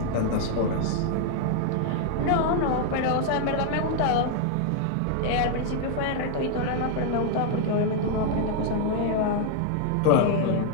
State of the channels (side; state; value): both; different; correlation 0.00